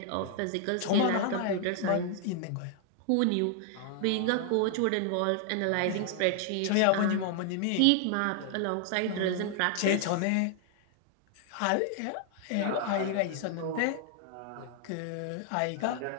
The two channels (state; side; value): different; both; correlation 0.00